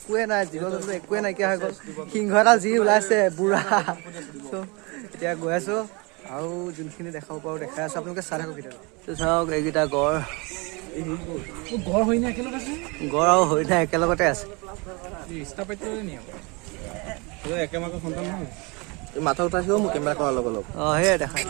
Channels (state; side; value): quieter; left; 28.8 dB